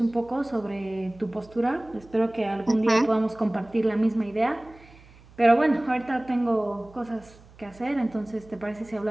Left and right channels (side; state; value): right; noise; hum, 24 dB below the sound